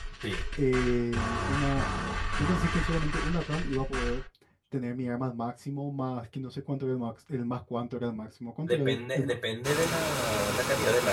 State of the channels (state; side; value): identical; both; correlation 1.00